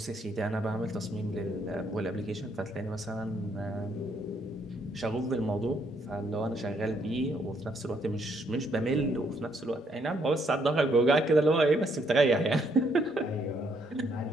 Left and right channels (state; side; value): normal; both; correlation 0.71